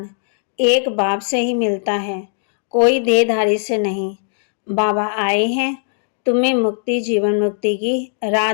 एक बाप से ही मिलता है, कोई देहधारी से नहीं। बाबा आए हैं तुम्हें मुक्ति, जीवन मुक्ति की राह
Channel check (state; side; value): silent; right; digital silence